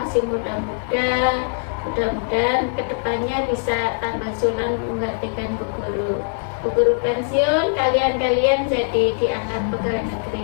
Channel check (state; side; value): silent; right; digital silence